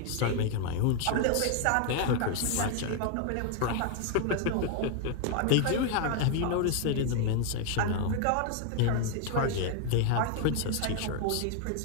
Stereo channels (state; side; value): different; both; correlation 0.00